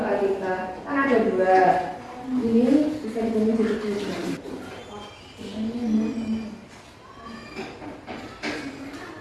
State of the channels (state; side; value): identical; both; correlation 1.00